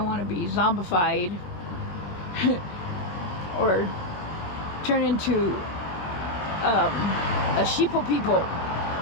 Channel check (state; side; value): late; right; 21 ms